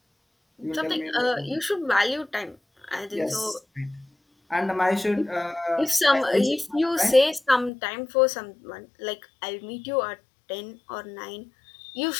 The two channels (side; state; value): right; drops out; at 7.7 s